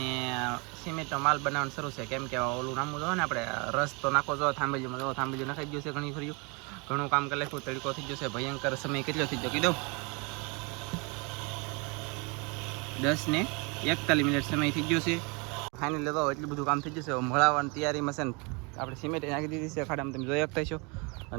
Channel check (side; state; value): left; quieter; 30.7 dB